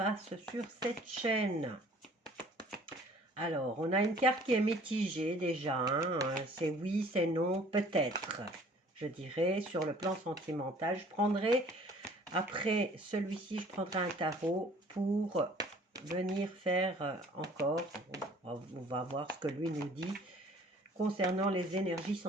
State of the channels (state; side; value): normal; both; correlation 0.53